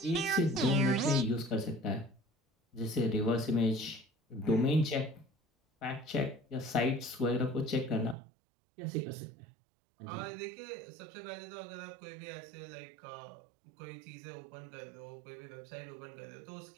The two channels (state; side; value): drops out; left; at 8.2 s